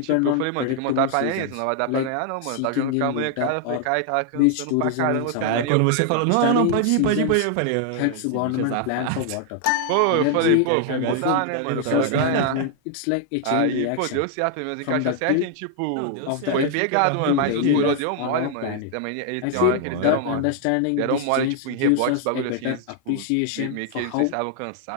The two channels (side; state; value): both; different; correlation 0.00